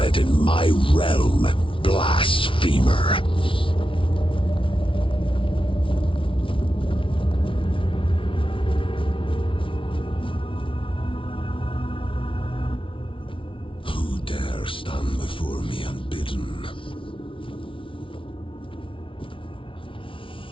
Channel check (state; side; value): late; right; 0.25 ms